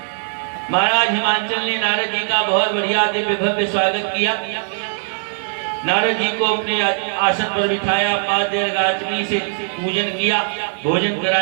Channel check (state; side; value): silent; left; 66 dB below the other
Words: महाराज हिमांचल ने नारद जी का बहुत बढ़िया दिव्य भव्य स्वागत किया। नारद जी को अपने आसन पर बिठाया, पाद्य अर्घाग्नि से पूजन किया, भोजन